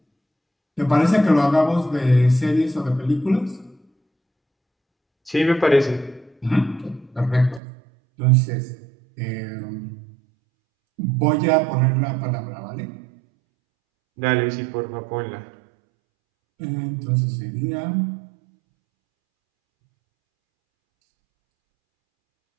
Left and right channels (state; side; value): drops out; left; at 7.6 s